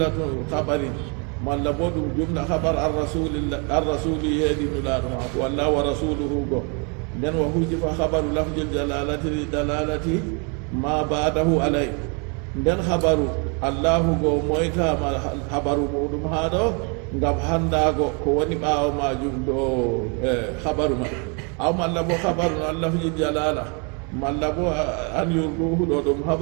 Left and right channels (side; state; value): left; quieter; 35.3 dB